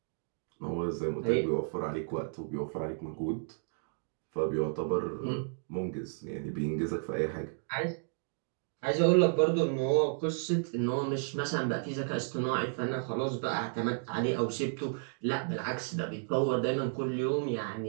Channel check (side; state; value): left; silent; digital silence